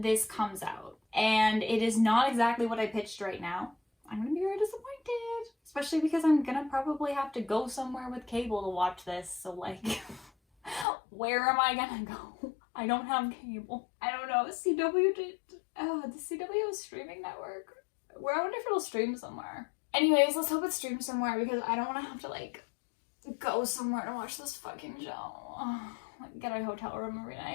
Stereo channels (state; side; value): drops out; right; at 10.9 s